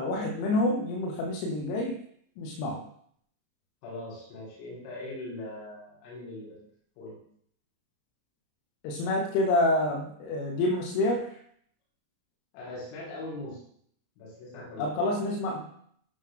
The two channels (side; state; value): right; late; 33 ms